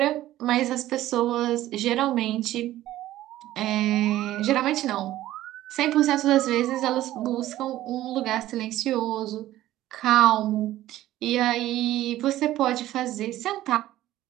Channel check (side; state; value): left; quieter; 14.5 dB